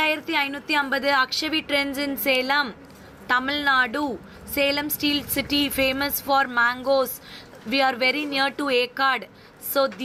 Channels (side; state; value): both; identical; correlation 1.00